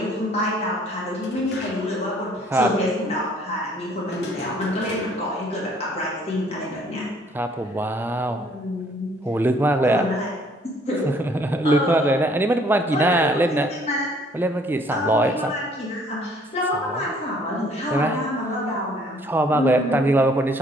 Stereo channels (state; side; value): normal; both; correlation 0.60